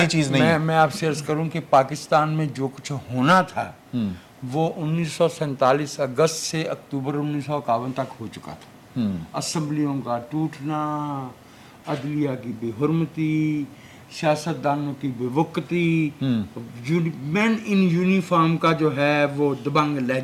चीज़ नहीं है। मैं आपसे अर्ज करूं कि पाकिस्तान में जो कुछ होना था वो 1947 अगस्त से अक्टूबर 1951 तक हो चुका था। असेंबलियों का टूटना, अदलिया की बेहुरमती, सियासतदानों की बेवकती, मैन इन यूनिफॉर्म का जो है वो दबंग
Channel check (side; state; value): both; identical; correlation 1.00